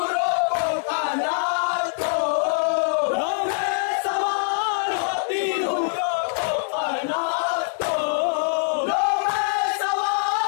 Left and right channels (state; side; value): silent; right; digital silence